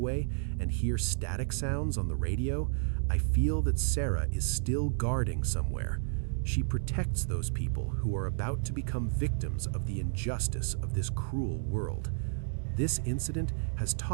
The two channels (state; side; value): silent; left; digital silence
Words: and hear static sounds on the radio, I feel that Sarah is still guarding somewhere. She protects those people who are about to become victims of the injustice of this cruel world. This incident has